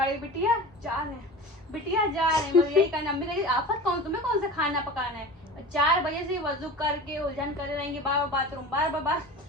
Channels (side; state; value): both; normal; correlation 0.34